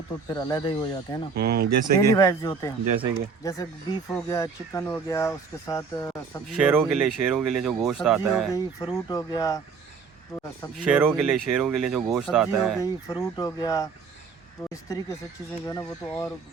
तो फिर अलग ही हो जाते हैं ना, जैसे डेली कि वाइज जो होते हैं, जैसे बीफ हो गया, चिकन हो गया, उसके साथ सब्जी शेरों के लिए जो गोश्त सब्जी आता हो है, गई, फ्रूट हो गया, तो सब्जी शेरों हो के गई, लिए जो गोश्त सब्जी आता हो है, गई, फ्रूट हो गया, तो इस तरीके से चीज़ें जो है ना वो तो और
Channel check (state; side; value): quieter; left; 5.5 dB